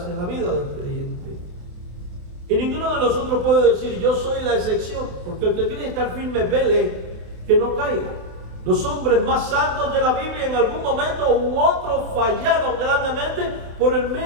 en la vida del creyente. Y ninguno de nosotros puede decir: yo soy la excepción, porque el que quiere estar firme vele que no caiga. Los hombres más santos de la Biblia en algún momento u otro fallaron grandemente por el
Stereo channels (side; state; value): left; late; 28 ms